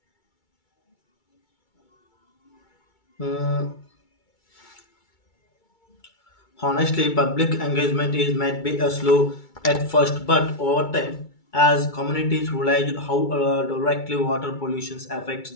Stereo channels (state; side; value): late; right; 2.3 ms